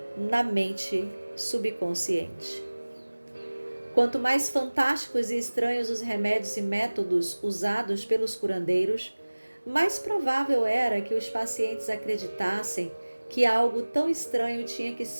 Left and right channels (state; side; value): inverted; both; correlation -1.00